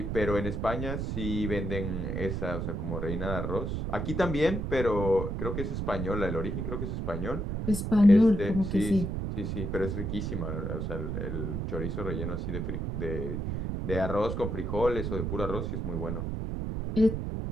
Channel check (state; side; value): noise; right; rumble, 2 dB below the sound